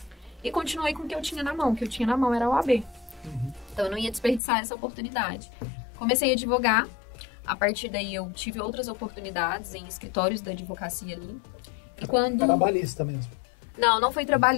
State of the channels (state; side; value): drops out; right; at 4.4 s